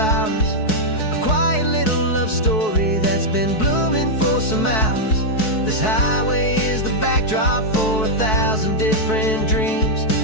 A quiet little love story that's been blooming for some hours. This highway is the backdrop for 1,000 different dreams,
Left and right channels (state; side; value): late; right; 4.6 ms